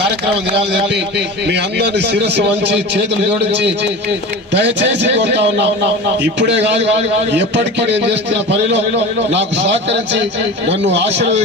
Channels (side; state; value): both; normal; correlation 0.32